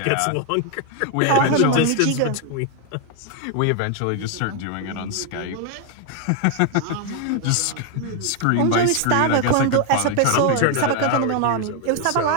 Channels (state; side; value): different; both; correlation 0.00